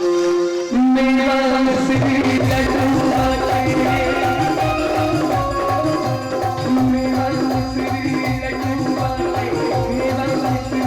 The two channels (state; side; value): identical; both; correlation 1.00